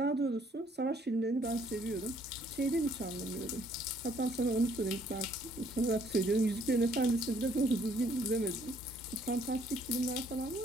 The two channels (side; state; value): both; normal; correlation 0.64